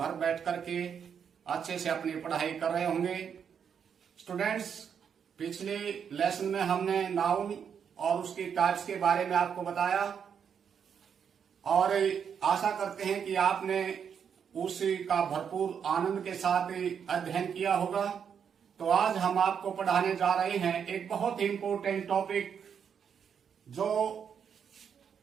बैठ करके अच्छे से अपनी पढ़ाई कर रहे होंगे। स्टूडेंट्स, पिछले लेसन में हमने नाउन और उसकी टाइप्स के बारे में आपको बताया और आशा करते हैं कि आपने उसका भरपूर आनंद के साथ अध्ययन किया होगा। तो आज हम आपको पढ़ाने जा रहे हैं एक बहुत ही इंपॉर्टेंट टॉपिक, जो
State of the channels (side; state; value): left; quieter; 7.4 dB